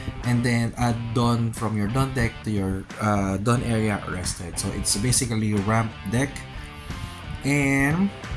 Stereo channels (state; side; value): identical; both; correlation 1.00